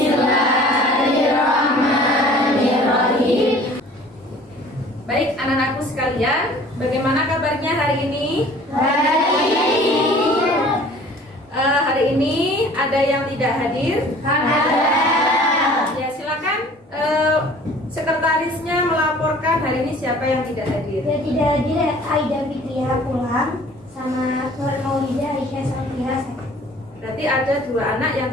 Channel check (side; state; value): both; normal; correlation 0.49